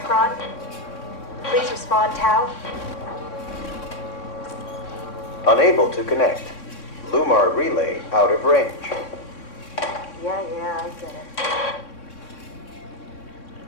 Please respond, Tau. Unable to connect. Lumar relay out of range. Yeah, I get it.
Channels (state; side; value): late; right; 3.6 ms